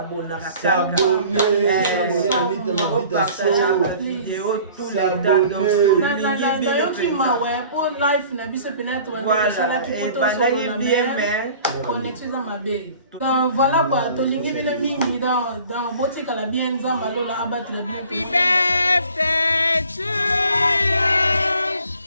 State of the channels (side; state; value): both; inverted; correlation -0.50